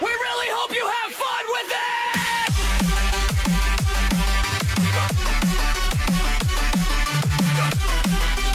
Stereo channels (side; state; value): both; identical; correlation 1.00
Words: really hope you have fun with it!